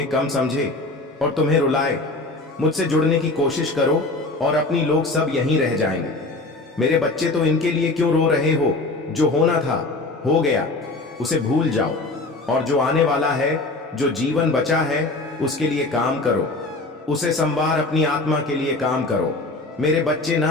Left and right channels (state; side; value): quieter; right; 3.1 dB